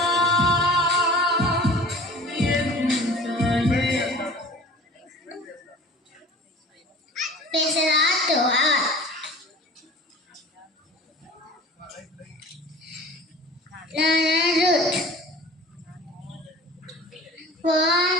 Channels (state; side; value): normal; both; correlation 0.42